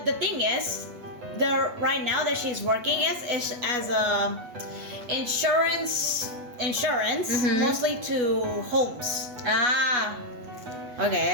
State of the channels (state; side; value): late; left; 8.1 ms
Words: the thing is, right now that she's working is as a insurance, mostly to homes.